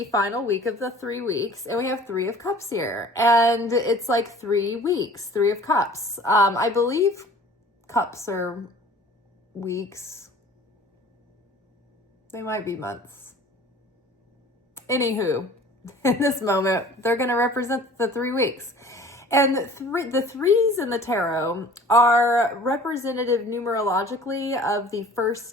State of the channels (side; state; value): both; normal; correlation 0.47